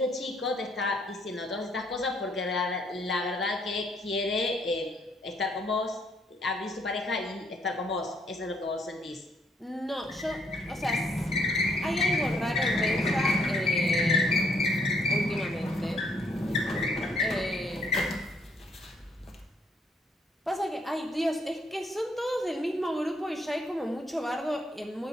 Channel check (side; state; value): both; normal; correlation 0.69